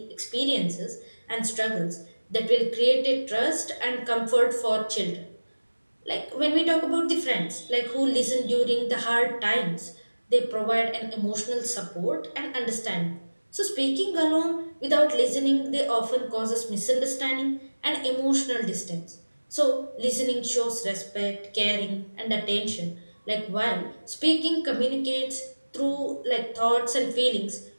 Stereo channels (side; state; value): both; inverted; correlation -1.00